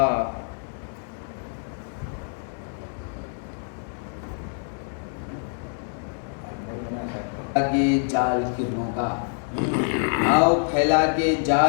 کے جال کرنوں کا آؤ پھیلا کے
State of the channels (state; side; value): silent; right; 58 dB below the other